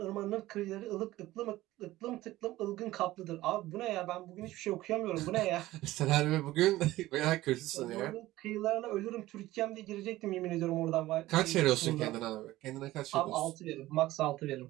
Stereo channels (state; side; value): quieter; left; 16.7 dB